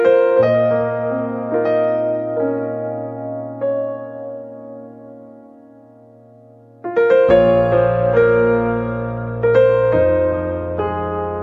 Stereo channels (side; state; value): both; identical; correlation 1.00